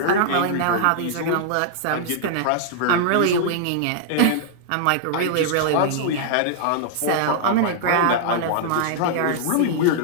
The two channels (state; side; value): different; both; correlation -0.01